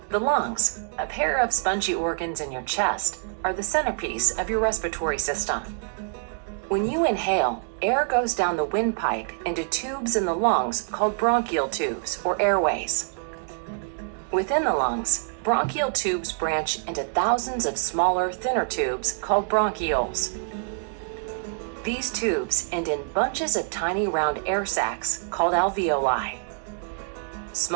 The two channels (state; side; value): silent; left; digital silence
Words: The lungs, a pair of spongy organs in your chest, are the centerpiece of your respiratory system. When you inhale, air goes down the windpipe into tubes in the lungs called bronchial tubes or airways. Within the lungs, bronchial tubes branch into thousands of smaller, thinner tubes called bronchioles. These tubes end in bunches of tiny round air sacs called alveoli.